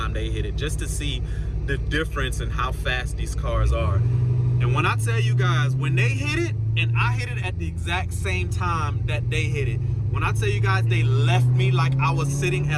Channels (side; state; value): both; identical; correlation 1.00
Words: they hit it, just to see the difference in how fast these cars are. And when I tell you guys, when they hit it and I hit it at the exact same time that they hit it, when I tell you guys they left me like I was sitting